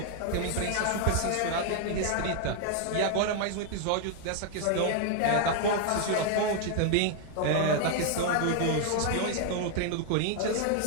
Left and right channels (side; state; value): both; different; correlation 0.00